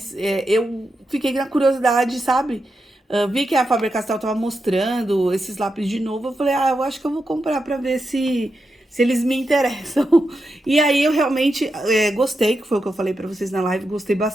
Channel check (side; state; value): both; normal; correlation 0.87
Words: eu fiquei na curiosidade, sabe? Vi que a Faber-Castell tava mostrando esses lápis de novo, eu falei, eu acho que eu vou comprar pra ver se eles me interessam. E aí eu realmente gostei, que foi o que eu falei pra vocês na live, gostei